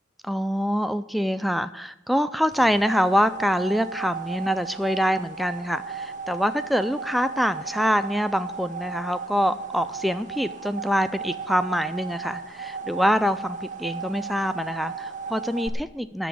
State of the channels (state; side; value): normal; both; correlation 0.85